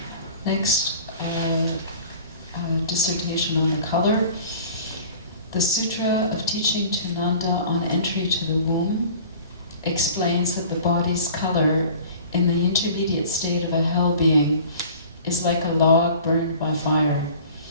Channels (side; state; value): both; inverted; correlation -0.44